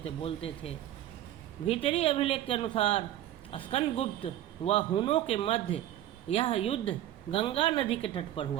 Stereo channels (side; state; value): left; quieter; 12.8 dB